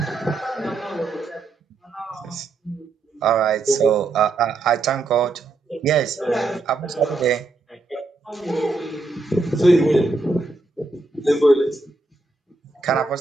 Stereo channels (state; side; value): quieter; left; 3.4 dB